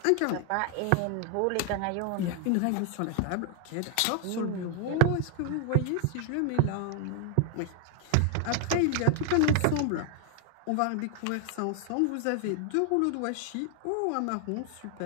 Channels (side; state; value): both; different; correlation 0.00